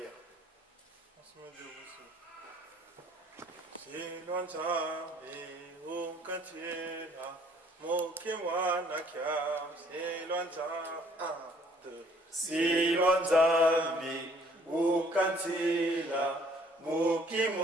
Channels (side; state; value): both; normal; correlation 0.60